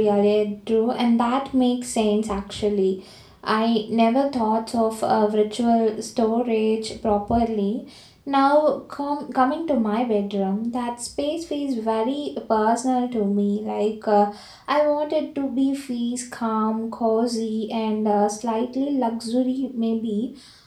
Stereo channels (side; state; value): both; identical; correlation 1.00